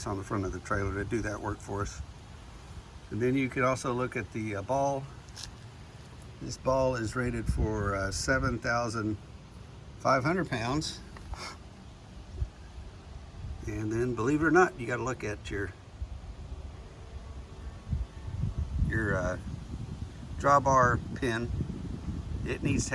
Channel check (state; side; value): identical; both; correlation 1.00